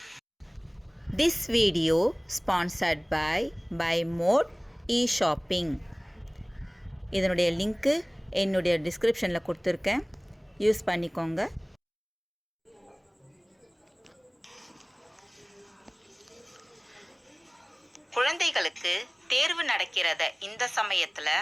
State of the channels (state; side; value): identical; both; correlation 1.00